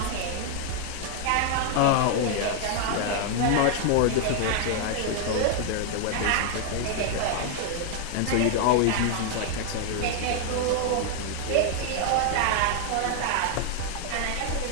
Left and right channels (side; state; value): both; different; correlation 0.00